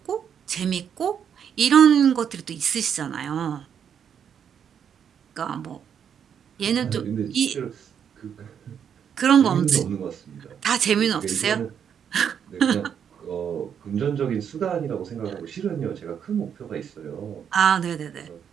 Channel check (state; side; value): quieter; left; 8.1 dB